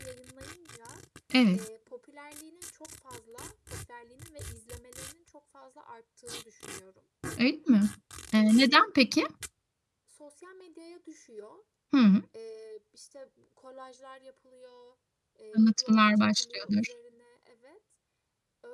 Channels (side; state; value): both; identical; correlation 1.00